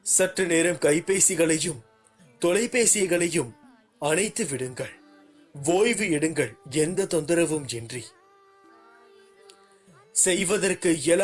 சற்று நேரம் கைபேசிகளையும் தொலைபேசிகளையும் அணைத்து விடுங்கள். ஓய்வு எடுங்கள், எந்த தொந்தரவும் இன்றி. செய்வதற்கு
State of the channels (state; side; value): identical; both; correlation 1.00